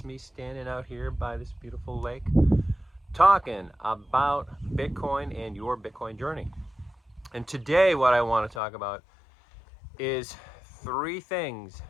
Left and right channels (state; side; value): drops out; right; at 8.6 s